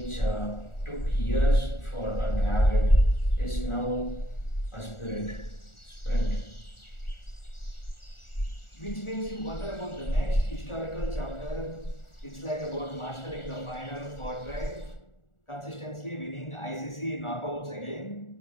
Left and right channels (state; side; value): late; right; 1.4 ms